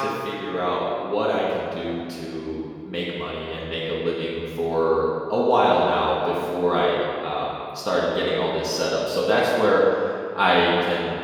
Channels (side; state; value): both; identical; correlation 1.00